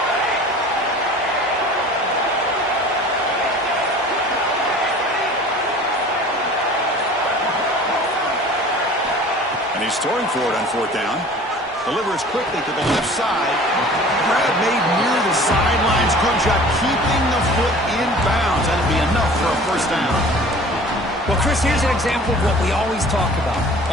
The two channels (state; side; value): normal; both; correlation 0.45